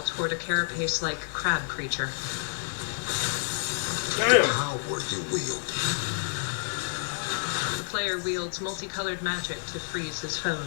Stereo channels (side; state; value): right; silent; digital silence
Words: toward a carapace-like crab creature. Damn. Power you wield. The player wields multicolored magic to freeze his